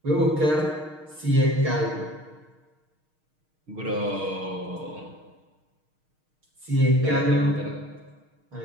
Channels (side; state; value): left; late; 6.5 ms